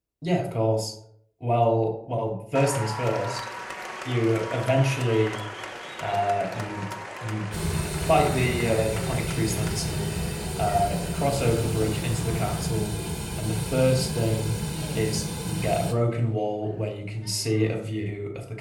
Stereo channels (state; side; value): identical; both; correlation 1.00